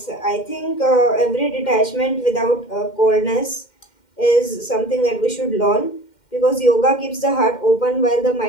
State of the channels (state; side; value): late; right; 2.1 ms